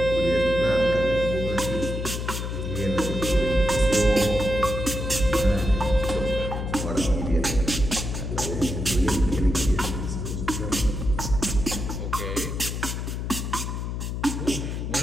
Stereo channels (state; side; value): noise; left; hum, 4 dB below the sound